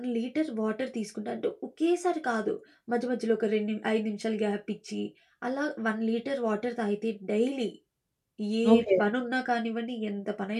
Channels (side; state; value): both; identical; correlation 1.00